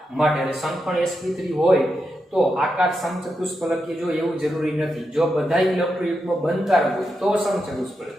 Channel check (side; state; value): both; normal; correlation 0.86